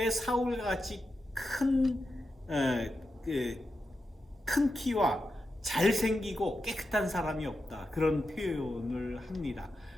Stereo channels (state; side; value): normal; both; correlation 0.88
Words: 사울과 같이 큰 키와 잘생기고 깨끗한 사람이 없다. 그런 표현을 합니다.